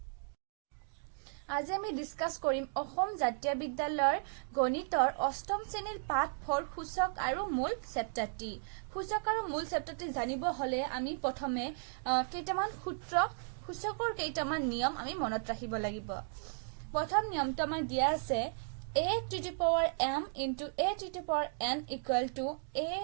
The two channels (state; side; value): silent; left; digital silence